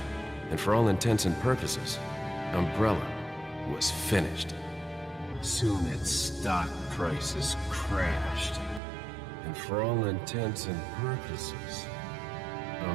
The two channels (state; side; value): drops out; left; at 8.8 s